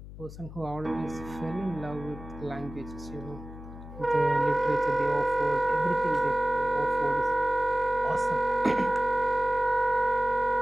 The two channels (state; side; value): noise; left; hum, 14 dB below the sound